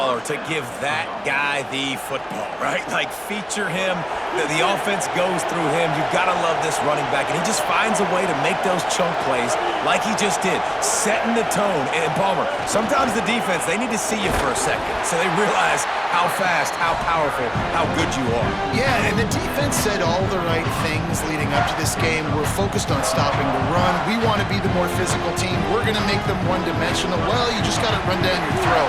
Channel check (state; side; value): identical; both; correlation 1.00